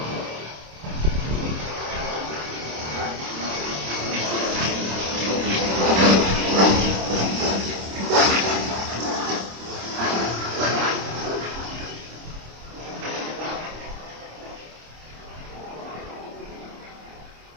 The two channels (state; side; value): late; left; 26 ms